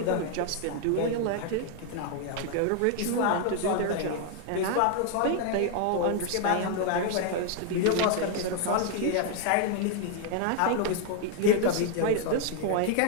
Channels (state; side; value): different; both; correlation 0.00